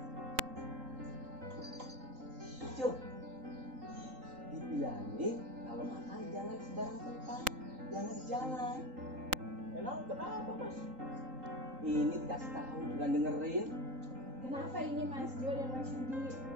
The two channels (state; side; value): late; left; 3.8 ms